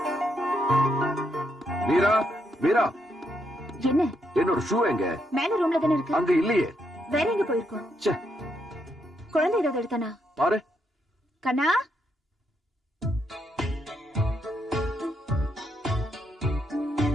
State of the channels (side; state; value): both; normal; correlation 0.78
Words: மீரா, மீரா, என்ன? என்னோட ஷூ எங்க? மேல ரூம்ல தானே இருக்கு. அங்க இல்லையே. வேற எங்க போயிருக்கோம்? குழந்தை ஏதாவது எடுத்தானா? பாரு. கண்ணா,